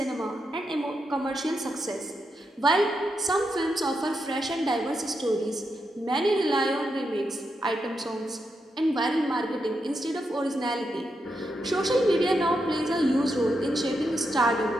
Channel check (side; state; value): both; normal; correlation 0.84